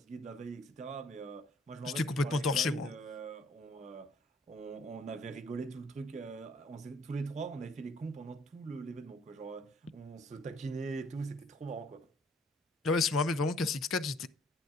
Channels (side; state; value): both; normal; correlation 0.61